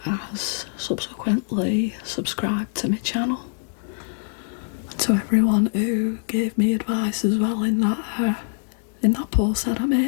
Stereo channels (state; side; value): silent; right; digital silence